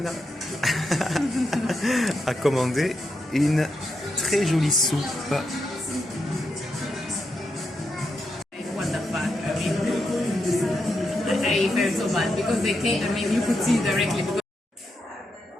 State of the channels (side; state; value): both; normal; correlation 0.84